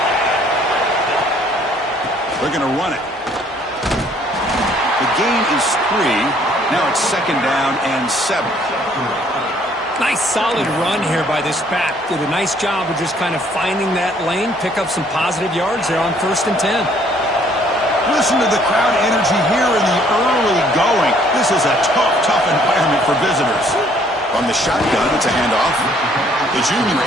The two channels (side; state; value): both; normal; correlation 0.62